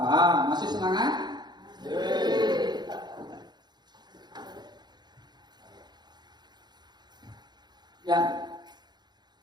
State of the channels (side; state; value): left; late; 0.21 ms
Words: Masih semangat? Ya,